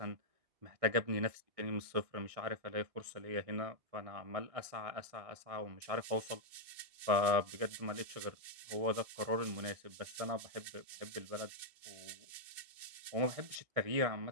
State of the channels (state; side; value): late; left; 1.6 ms